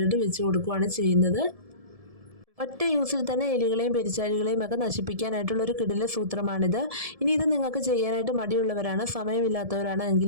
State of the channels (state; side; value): late; left; 1.7 ms